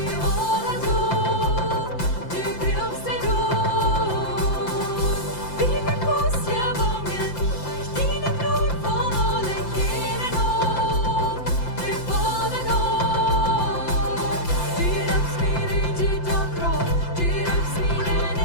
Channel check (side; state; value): right; late; 5.8 ms